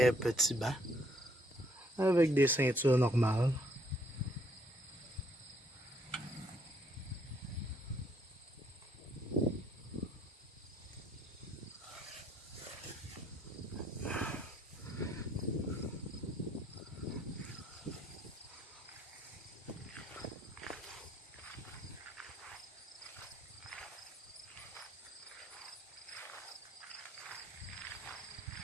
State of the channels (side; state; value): both; normal; correlation 0.68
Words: petits bancs avec des ceintures normales.